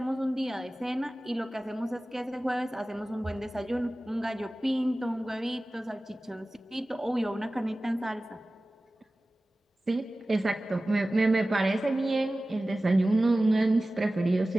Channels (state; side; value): normal; both; correlation 0.97